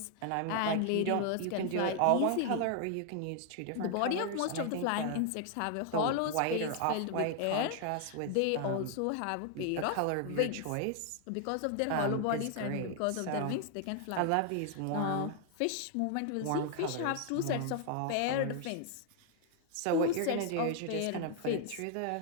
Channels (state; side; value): different; both; correlation 0.00